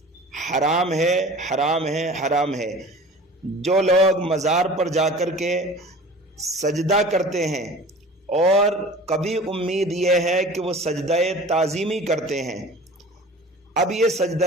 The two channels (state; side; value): normal; both; correlation 0.41